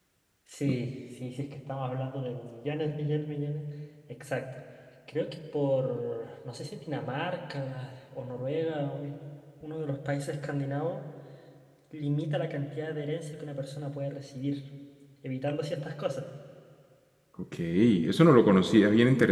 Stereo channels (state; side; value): identical; both; correlation 1.00